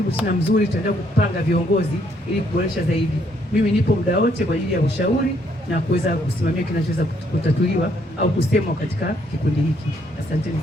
sana mzuri, tutaendelea kupanga viongozi ili kuboresha zaidi. Mimi nipo muda wote kwa ajili ya ushauri na kuweza kusimamia kinachoweza kutatuliwa au kusemwa katika kikundi hiki. Asanteni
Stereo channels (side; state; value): both; normal; correlation 0.70